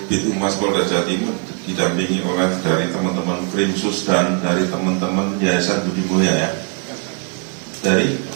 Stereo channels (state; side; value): quieter; left; 38.3 dB